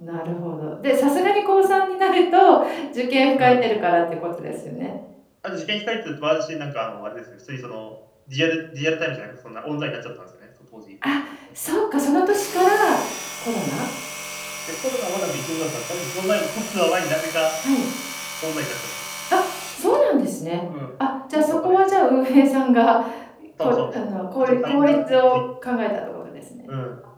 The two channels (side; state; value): both; identical; correlation 1.00